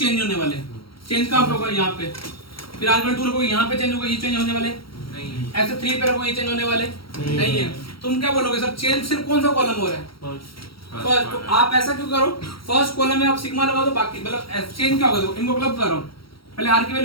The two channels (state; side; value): late; right; 0.75 ms